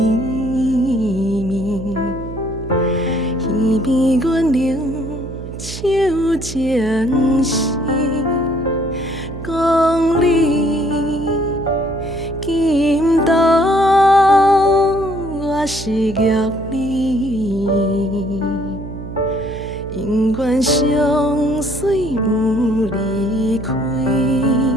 耳边阮流手情丝，讲你今朝我是玉你。永远相随不离开。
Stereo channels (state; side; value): noise; right; hum, 10 dB below the sound